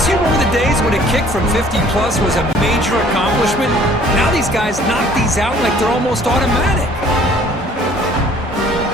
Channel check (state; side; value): normal; both; correlation 0.55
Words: you remember the days when a kick from 50-plus was a major accomplishment? Now these guys knock these out like they're almost automatic.